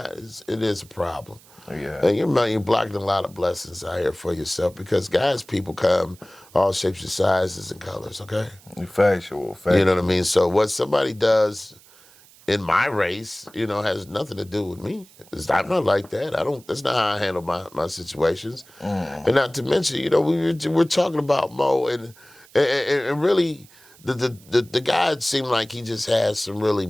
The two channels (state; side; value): noise; right; hiss, 25 dB below the sound